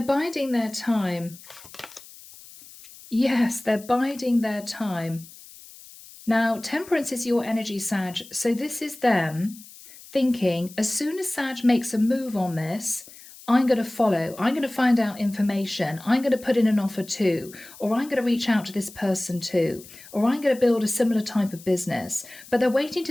biding their time. Yes, they're biding their time. Now, Temperance is your energy, Sag. So this is them thinking, as soon as Sag makes a move on this, I'm going to follow. I'm going to find out information. I'm going to put in an offer too. Or I'm going to reach out to this person too. Or I'm going to build a similar type of business. But they're waiting to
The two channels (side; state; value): left; noise; hiss, 19 dB below the sound